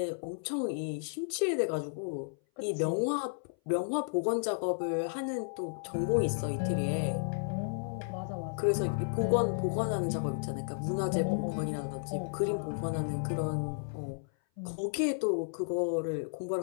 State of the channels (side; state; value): right; silent; 56 dB below the other